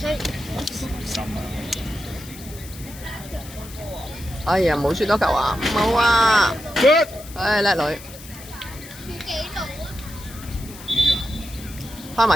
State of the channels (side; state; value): left; noise; hiss, 17 dB below the sound